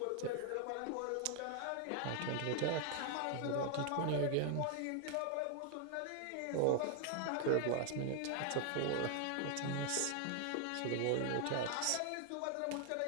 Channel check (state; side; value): different; both; correlation 0.00